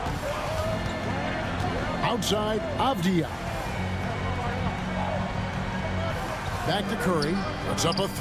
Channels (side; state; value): both; identical; correlation 1.00